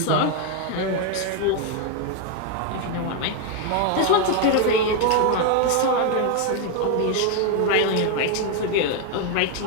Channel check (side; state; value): both; different; correlation 0.01